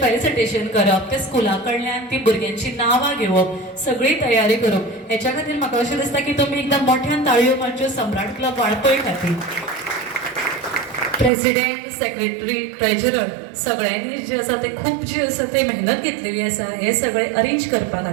करप, ते स्कुला कडल्यान ती भुरग्यांची नांवां घेवप, सगळी तयारी करप. हेच्या खातीर म्हाका अशें दिसता की तुमी एकदम मोठ्यान ताळयो मारच्यो सम्राट क्लब वाळपय खातीर. प्रेसिडेंट, सेक्रेटरी, ट्रेजरर सगळ्यांनी जे आसा ते खूप जी आसा ते मेहनत घेतलेली आसा हे सगळे अरेंज करपा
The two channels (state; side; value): drops out; left; at 11.3 s